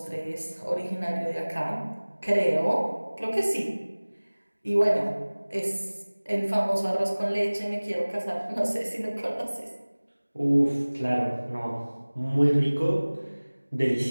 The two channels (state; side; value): inverted; both; correlation -1.00